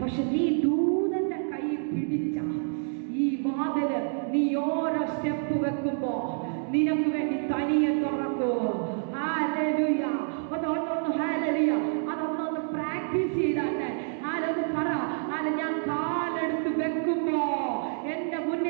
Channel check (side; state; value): left; silent; digital silence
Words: പക്ഷെ നീ ദൂതന്റെ കൈ പിടിച്ച ഈ വാതില് നീ ഓരോ സ്റ്റെപ്പ് വെക്കുമ്പോ നിനക്ക് വേണ്ടി തനിയെ തുറക്കൂ. ഹല്ലേലൂയ. അതൊന്നൊന്ന് ഹല്ലേലൂയ അതൊന്നൊന്ന് പ്രാക്ടീസ് ചെയ്താട്ടെ. ആരൊന്ന് പറ, ഞാൻ കാലെടുത്ത് വെക്കുമ്പോ എന്റെ